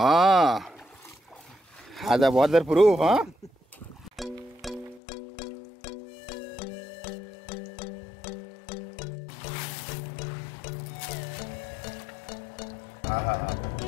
आधा वाटर प्रूफ। हाँ,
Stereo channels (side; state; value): right; drops out; at 5.0 s